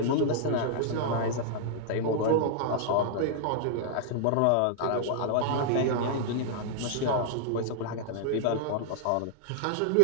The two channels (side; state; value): both; different; correlation -0.01